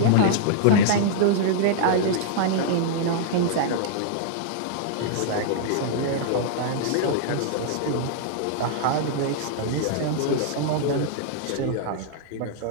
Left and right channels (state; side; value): different; both; correlation -0.01